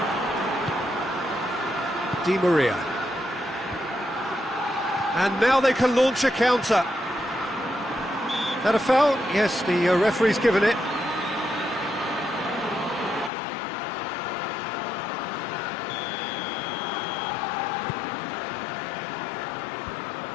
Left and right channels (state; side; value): drops out; right; at 13.3 s